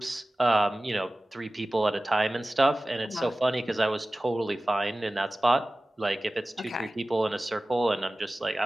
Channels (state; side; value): normal; both; correlation 0.96